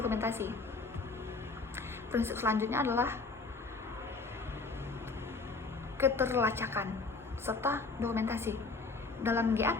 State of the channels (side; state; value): right; quieter; 4.0 dB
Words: Prinsip selanjutnya adalah keterlacakan serta dokumentasi. Dalam